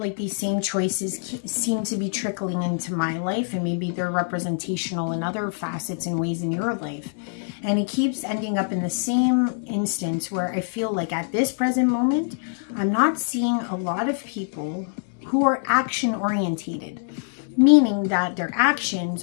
like these same choices seem to be trickling into my life, and maybe they're representational in other facets and ways in your life, and it keeps ending up in the same instance where I feel like at this present moment I'm not seeing a lot of people who are action orientated, meaning that their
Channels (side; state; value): right; silent; 62 dB below the other